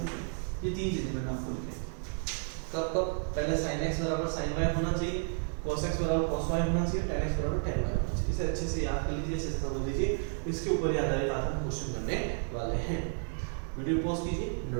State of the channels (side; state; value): left; silent; 56 dB below the other